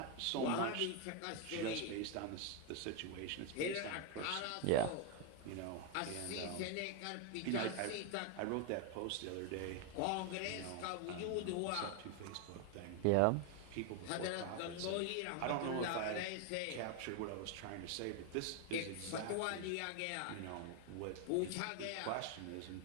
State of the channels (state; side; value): different; both; correlation 0.01